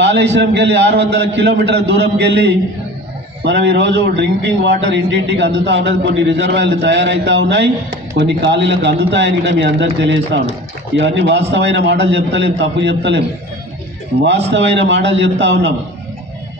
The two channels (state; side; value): normal; both; correlation 0.39